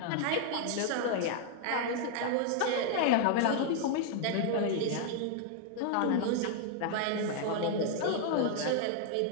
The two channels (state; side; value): different; both; correlation 0.00